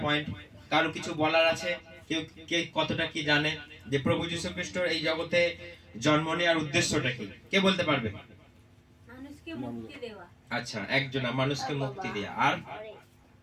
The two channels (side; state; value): both; identical; correlation 1.00